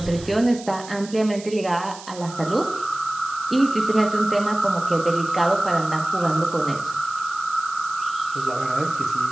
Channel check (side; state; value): right; noise; hiss, 16 dB below the sound